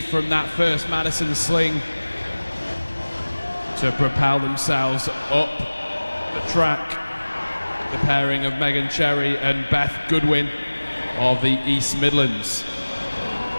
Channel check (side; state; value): both; inverted; correlation -1.00